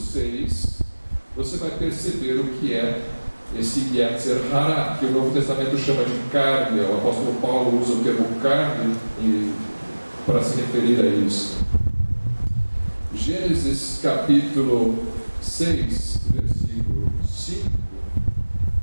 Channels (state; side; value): inverted; both; correlation -1.00